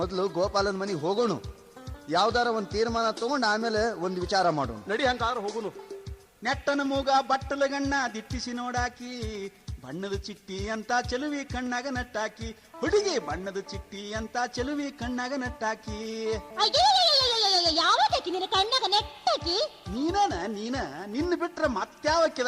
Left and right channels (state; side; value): identical; both; correlation 1.00